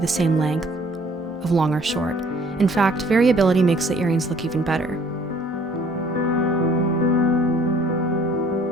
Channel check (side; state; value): both; normal; correlation 0.57